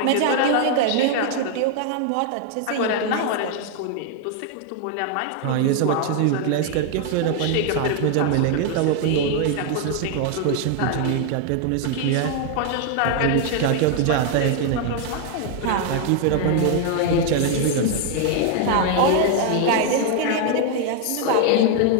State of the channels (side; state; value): both; different; correlation 0.00